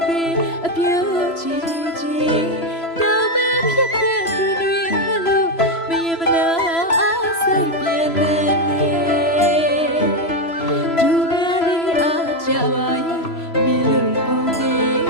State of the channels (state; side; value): late; right; 3.0 ms